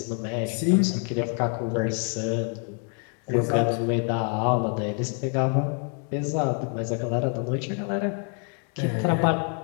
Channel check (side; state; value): right; quieter; 39.0 dB